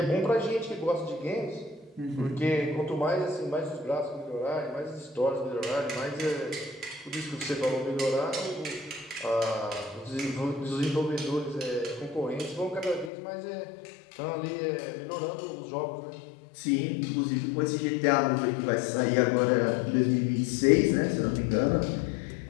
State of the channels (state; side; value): drops out; right; at 13.1 s